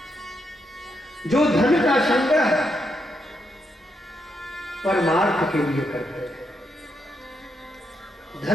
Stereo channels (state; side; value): normal; both; correlation 0.81